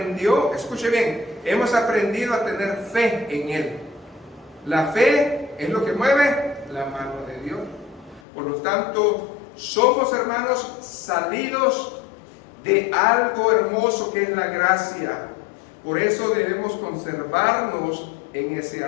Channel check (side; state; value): right; drops out; at 8.2 s